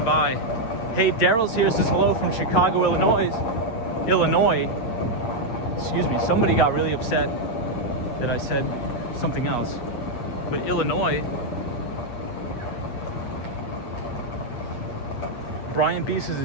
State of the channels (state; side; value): late; right; 8.4 ms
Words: by. Hey, Daryl's here, says hello from Chicago, Illinois. Excuse me, somebody got really upset that I said something else. But Illinois. Brian B says